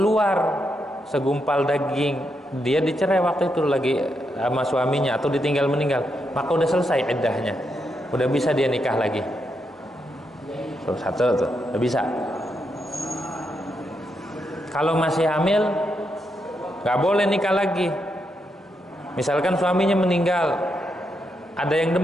segumpal daging, dia dicerai waktu itu lagi sama suaminya atau ditinggal meninggal, maka udah selesai iddahnya, udah bisa dia nikah lagi. Tuh, satu tuh, udah bisa. Kalau masih hamil, nggak boleh nikah lagi. Misalkan suaminya meninggal, ada yang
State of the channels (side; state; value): both; normal; correlation 0.82